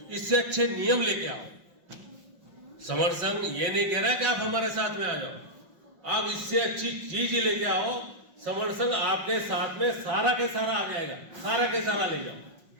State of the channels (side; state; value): left; late; 5.5 ms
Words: इससे अच्छे नियम लेके आओ। समण संघ ये नहीं कह रहा है कि आप हमारे साथ में आ जाओ, आप इससे अच्छी चीज ही लेके आओ। समण संघ आपके साथ में सारा के सारा आ जाएगा, सारा के सारा ले जाओ,